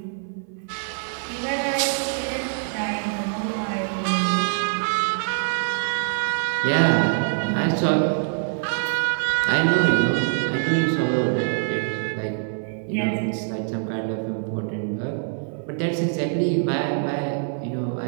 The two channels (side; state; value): left; silent; 58 dB below the other